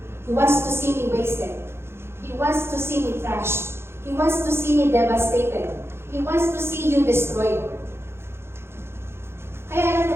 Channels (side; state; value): left; late; 0.12 ms